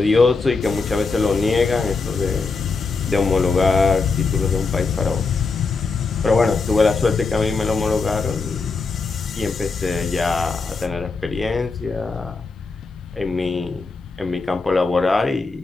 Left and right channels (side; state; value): right; quieter; 4.2 dB